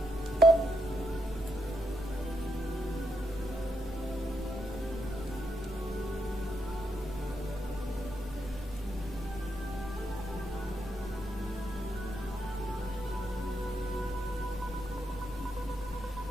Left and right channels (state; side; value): normal; both; correlation 0.80